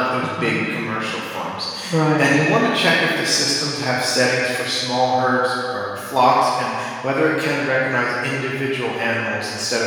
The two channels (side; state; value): both; identical; correlation 1.00